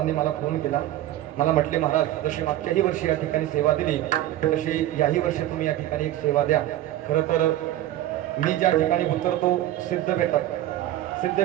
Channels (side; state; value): left; quieter; 13.8 dB